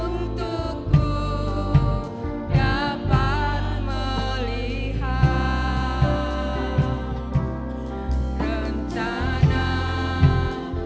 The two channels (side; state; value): both; identical; correlation 1.00